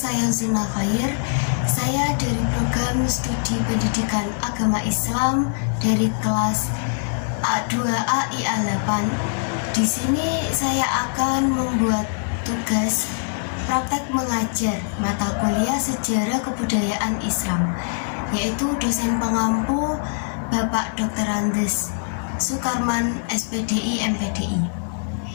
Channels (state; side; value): silent; right; digital silence